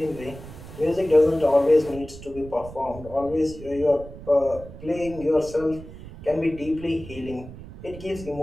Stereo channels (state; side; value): noise; right; rumble, 15 dB below the sound